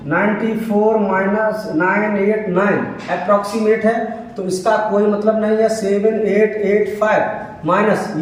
94 माइनस 989 अप्रोक्सीमेट है, तो इसका कोई मतलब नहीं है। 7885 माइनस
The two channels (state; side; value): identical; both; correlation 1.00